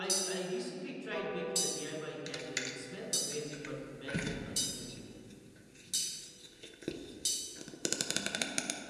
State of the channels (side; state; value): both; identical; correlation 1.00